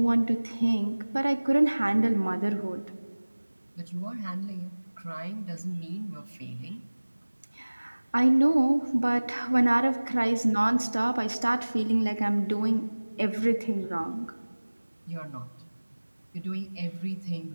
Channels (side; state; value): both; inverted; correlation -1.00